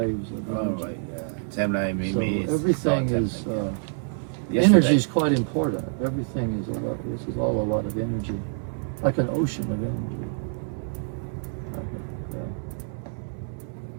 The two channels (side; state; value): left; silent; 61 dB below the other